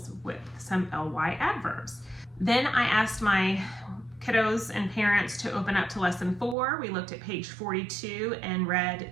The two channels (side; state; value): left; drops out; at 6.6 s